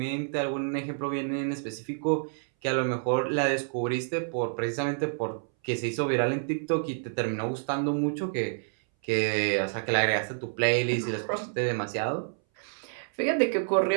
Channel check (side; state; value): left; silent; 59 dB below the other